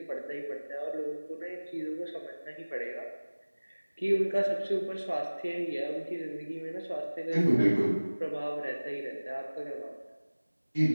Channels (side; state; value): both; inverted; correlation -1.00